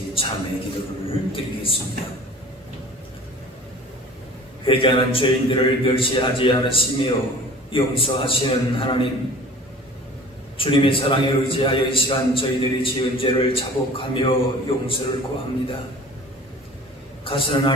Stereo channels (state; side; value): normal; both; correlation 0.43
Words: 참회 기도를 드리겠습니다. 회개하는 죄인들을 멸시하지 않으시며 용서하시는 하나님, 주님의 사랑에 의지하여 이 시간 저희들이 지은 죄를 자복하며 용서를 구합니다. 가서는